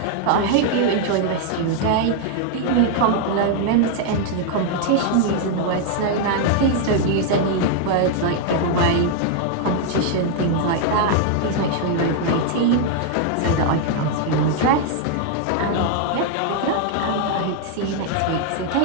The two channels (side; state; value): both; different; correlation 0.00